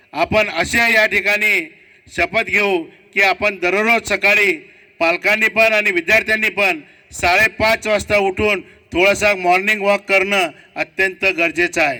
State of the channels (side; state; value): both; identical; correlation 1.00